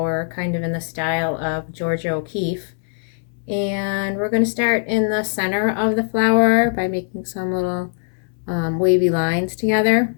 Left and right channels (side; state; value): right; silent; 65 dB below the other